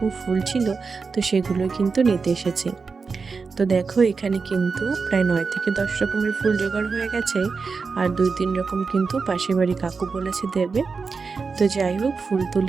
ফুল ছিল, তো সেগুলো কিন্তু নিতে এসেছি। তো দেখো এখানে কিন্তু প্রায় ৯ থেকে ১০ রকমের ফুল জোগাড় হয়ে গেছে। আর ২-৩ রকম কিন্তু পাশের বাড়ি কাকু বলেছে দেবে। তো যাই হোক, ফুল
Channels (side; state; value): left; quieter; 4.8 dB